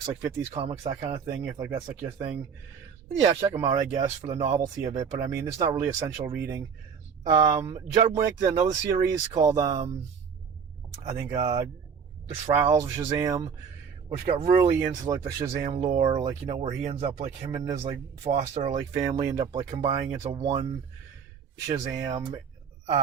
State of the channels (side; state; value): left; quieter; 6.6 dB